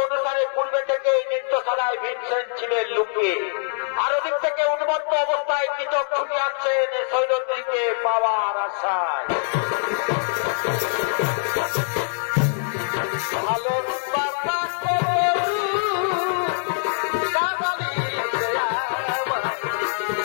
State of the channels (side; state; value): right; silent; digital silence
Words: অনুসারে পূর্বে থেকে এই নৃত্যশালায় ভীমসেন ছিলেন লুকিয়ে। আর ওদিক থেকে উন্মত্ত অবস্থায় কৃষক ছুটে আসছেন সৈরন্ধ্রীকে পাওয়ার আশায়। ভালো